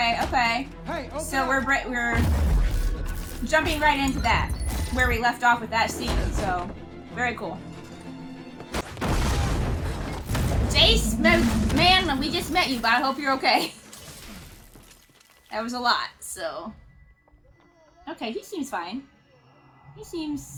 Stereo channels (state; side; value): identical; both; correlation 1.00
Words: Hey, okay. So we're jumping right into that, where we left off with that scene. So, very cool. Jayce, man, we just met you, but I hope you're okay. That was a lot, so. Okay, he seems fine. He